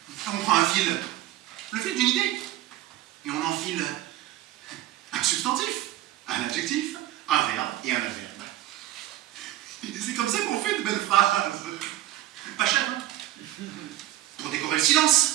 On prend un fil, le fil d'une idée, et on enfile un substantif, un adjectif, un verbe et un adverbe. Et c'est comme ça qu'on fait de belles phrases. Pas cher, hein? Pour décorer le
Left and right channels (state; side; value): quieter; left; 14.4 dB